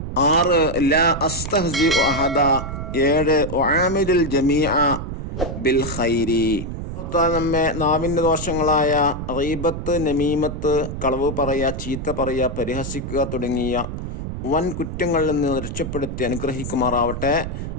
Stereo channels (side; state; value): right; noise; rumble, 6 dB below the sound